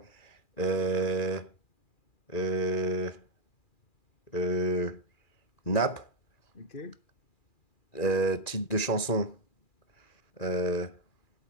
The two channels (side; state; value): right; late; 2.4 ms